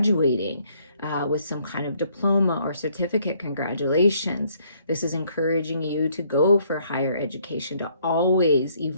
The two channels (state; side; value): inverted; both; correlation -0.66